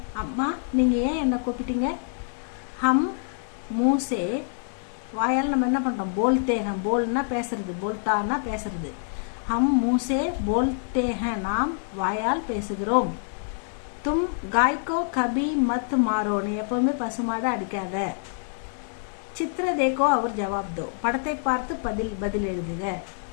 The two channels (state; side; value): silent; right; digital silence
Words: அம்மா நீங்கள் ஏன் என்னை கூப்பிட்டீங்க? ஹம் மூசே, வாயால் நம்ம என்ன பண்ணுறோம்? போல்தே ஹே. போல்னா பேசுறது, போல்தான்னா பேசுறது. हम मुँह से बोलते हैं. நாம் வாயால் பேசுகிறோம். तुम गाय को कभी मत मारो. நீ எப்பவுமே பசுமாடை அடிக்காத. चित्र देखो और जवाब दो. படத்தை பார்த்து பதில் எழுதுக.